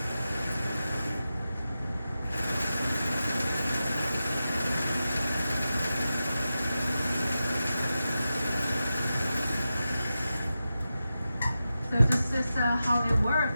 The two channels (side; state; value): both; inverted; correlation -0.92